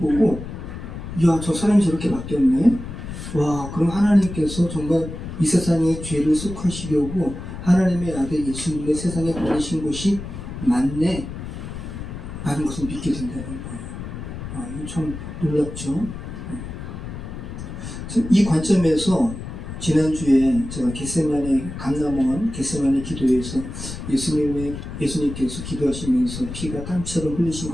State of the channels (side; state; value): left; noise; rumble, 9 dB below the sound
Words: 야, 저 사람이 저렇게 바뀌었네? 와, 그럼 하나님께서 정말 이 세상의 죄를 속하시려고 하나님의 아들 예수님의 세상에 보내신 것이 맞네? 라는 것을 믿게 된다는 거예요. 이거 참 놀랍죠? 이 관점에서 지난주에 제가 감남원 겟세마네 기도에서 예수님께서 기도하시면서 피가 땀처럼 흘리신